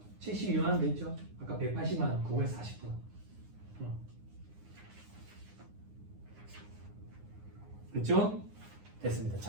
72만 원 돼 있죠. 아까 180만 원 그거에 40%. 됐죠? 됐습니다.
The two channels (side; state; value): left; late; 9.7 ms